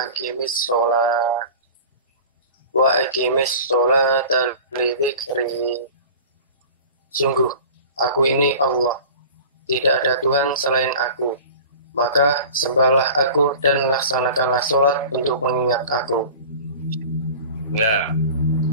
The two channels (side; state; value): both; inverted; correlation -0.38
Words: aqimis sholata li dzikri. Sungguh aku ini Allah, tidak ada Tuhan selain aku, maka sembahlah aku dan laksanakanlah sholat untuk mengingat aku. Ya,